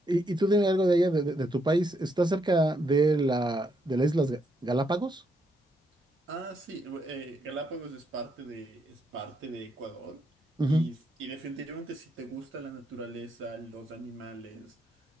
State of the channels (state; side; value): normal; both; correlation 0.77